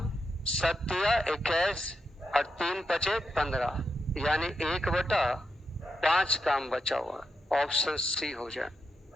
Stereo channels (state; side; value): normal; both; correlation 0.85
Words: 7 या 21 और 3 बचे 15, यानी 1 बटा 5 काम बचा हुआ। ऑप्शन सी हो जाए।